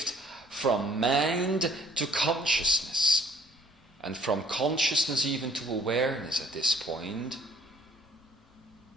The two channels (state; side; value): normal; both; correlation 0.58